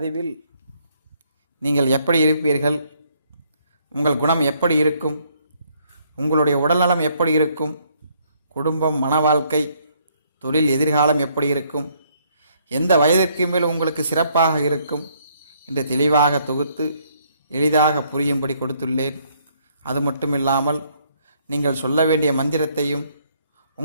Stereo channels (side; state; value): both; inverted; correlation -0.68